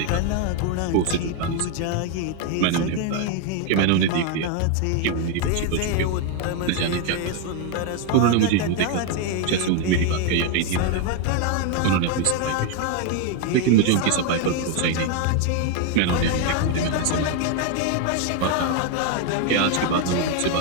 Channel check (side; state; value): both; different; correlation 0.01